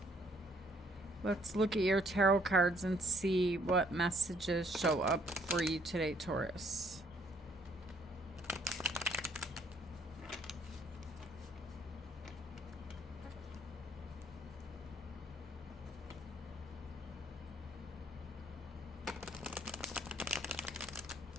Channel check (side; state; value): both; normal; correlation 0.65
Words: Let's look at your tarot cards and see what messages show up for you today, Taurus.